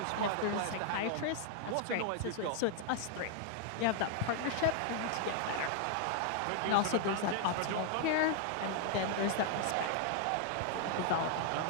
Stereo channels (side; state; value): both; different; correlation 0.00